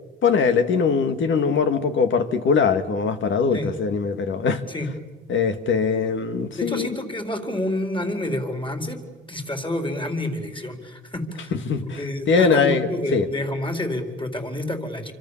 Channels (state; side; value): quieter; right; 4.2 dB